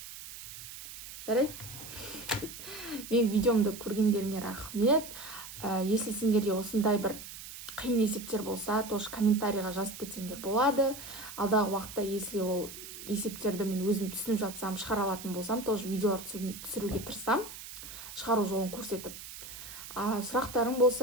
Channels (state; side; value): noise; right; hiss, 12 dB below the sound